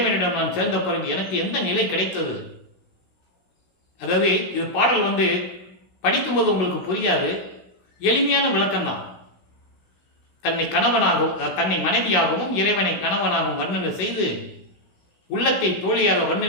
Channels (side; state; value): right; late; 16 ms